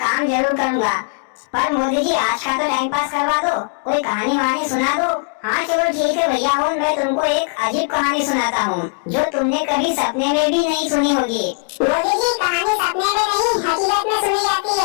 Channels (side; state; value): right; quieter; 39.9 dB